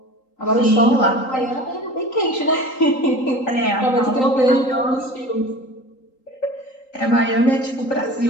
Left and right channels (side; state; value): right; late; 3.8 ms